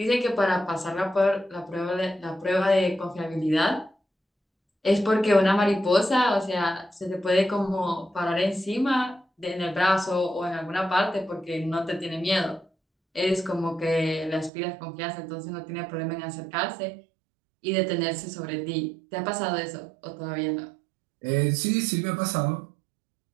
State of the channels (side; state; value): left; drops out; at 14.5 s